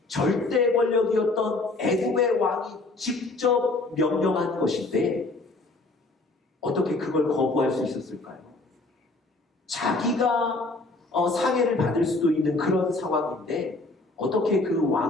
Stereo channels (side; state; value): right; quieter; 3.2 dB